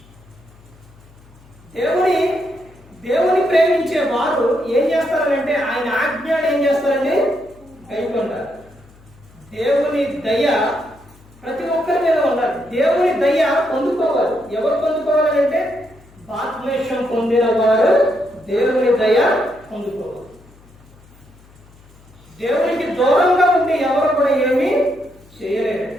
దేవుని ప్రేమించే వారు ఏం చేస్తారంటే ఆయన ఆజ్ఞలు ఏం చేస్తారండి? కైకొంటారు. దేవుని దయ ప్రతి ఒక్కరి మీద ఉండాలి. దేవుని దయ పొందుకోవాలి. ఎవరు పొందుకోవాలంటే బాప్తిస్మం పొందిన వారు దేవుని దయ పొందుకోవాలి. దేవునికి దూరంగా ఉండి ఎవరు కూడా ఏమీ చేయలేరు.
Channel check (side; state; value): left; noise; hum, 26 dB below the sound